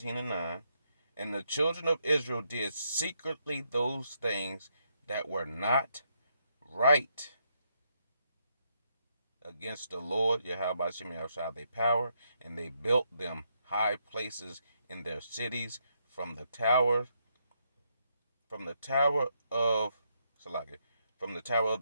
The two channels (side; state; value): both; inverted; correlation -0.77